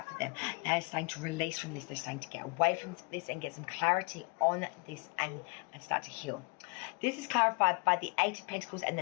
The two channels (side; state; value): right; quieter; 30.8 dB